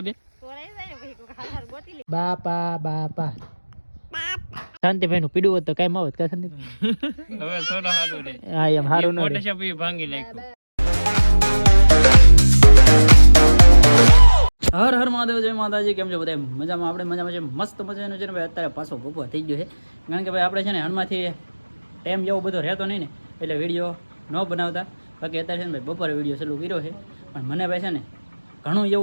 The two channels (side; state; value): both; inverted; correlation -1.00